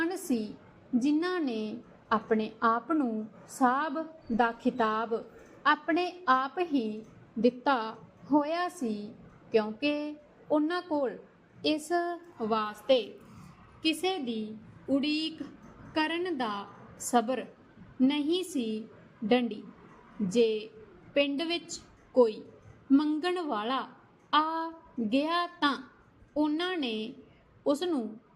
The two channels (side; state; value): both; identical; correlation 1.00